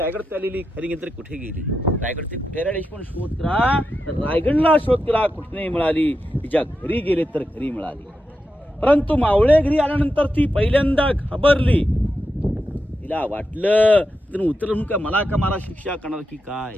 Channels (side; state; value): both; normal; correlation 0.88